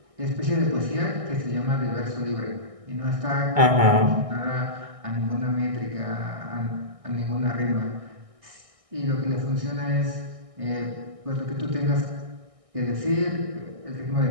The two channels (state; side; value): late; left; 1.6 ms